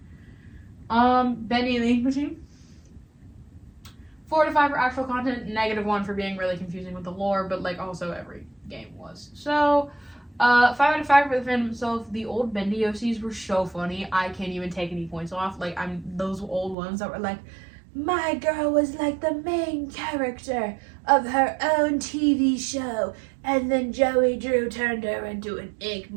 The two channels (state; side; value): drops out; left; at 16.8 s